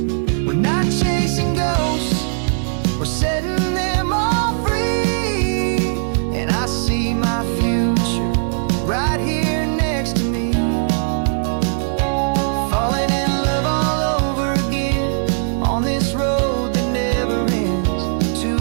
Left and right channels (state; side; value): silent; left; digital silence